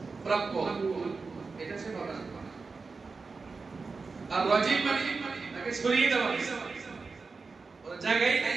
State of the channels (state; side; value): quieter; left; 4.4 dB